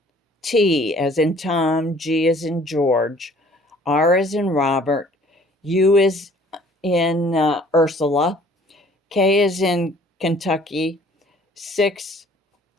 as in Tom, G as in George, R as in Robert, U is in Ursula, K is in Kentucky, 6X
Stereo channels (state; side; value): normal; both; correlation 0.55